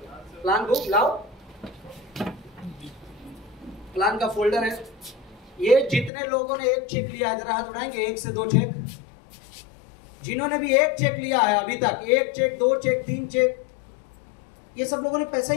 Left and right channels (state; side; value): drops out; right; at 6.1 s